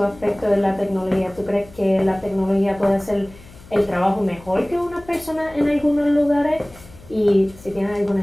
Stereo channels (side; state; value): left; noise; hum, 21 dB below the sound